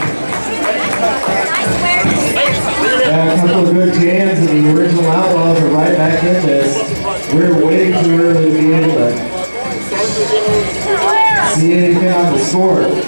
A couple of good jams, and the original Outlaws are right back in this. We're waiting too early to be able to see anything on the score.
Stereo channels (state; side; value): inverted; both; correlation -1.00